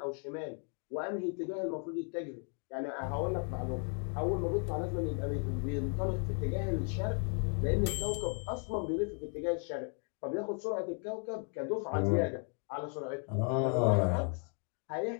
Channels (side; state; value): right; quieter; 39.7 dB